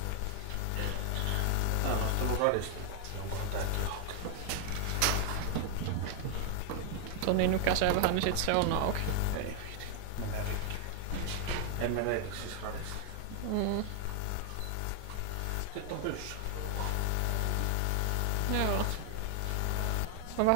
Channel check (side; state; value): both; different; correlation 0.00